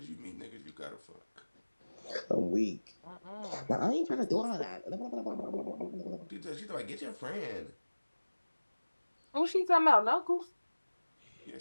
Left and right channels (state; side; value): inverted; both; correlation -1.00